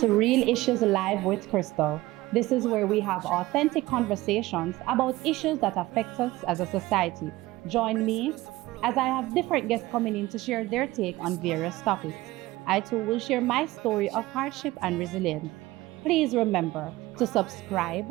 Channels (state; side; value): quieter; left; 18.5 dB